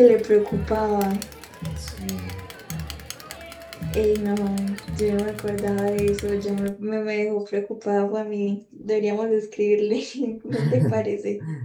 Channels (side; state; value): both; identical; correlation 1.00